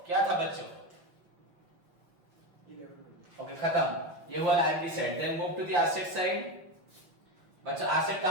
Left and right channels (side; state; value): left; late; 6.0 ms